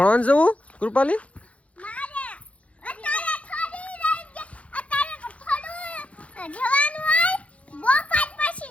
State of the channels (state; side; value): late; right; 0.064 ms